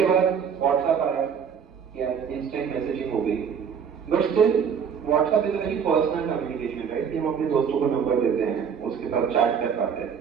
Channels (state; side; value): quieter; left; 7.1 dB